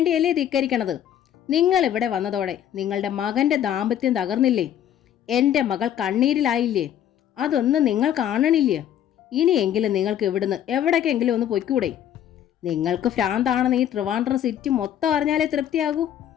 ധിക്കരിക്കണത്? നിങ്ങൾ ഇവിടെ വന്നതോടെ നിങ്ങളുടെ മകൻ്റെ ദാമ്പത്യം തകർന്നില്ലേ? എൻ്റെ മകൾ കണ്ണീരിലായില്ലേ? അതൊന്നും നിങ്ങൾ കാണണില്ലേ? ഇനിയെങ്കിലും നിങ്ങൾക്ക് ഇവിടുന്ന് എവിടേക്കെങ്കിലും ഒന്ന് പൊയ്ക്കൂടെ? നിങ്ങൾക്ക് ഭ്രാന്താണെന്ന് ഈ ട്രിവാൻഡ്രം സിറ്റി മൊത്തം അറിഞ്ഞാലേ തൃപ്തിയാകൂ.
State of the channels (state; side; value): quieter; right; 10.4 dB